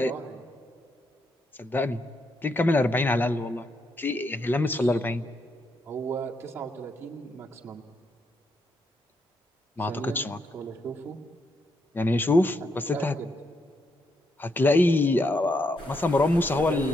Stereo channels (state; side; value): normal; both; correlation 0.78